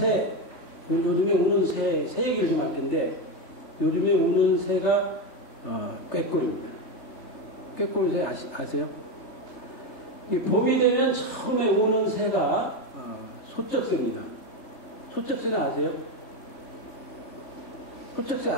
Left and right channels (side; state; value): right; late; 3.3 ms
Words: 요즘에 우는 새 얘기를 좀 할 텐데, 요즘에 우는 새가 꾀꼬리입니다. 꾀꼬리 아세요? 이 봄이 되면 처음에 우는 새가 소쩍새입니다. 소쩍새는 아세요? 소쩍새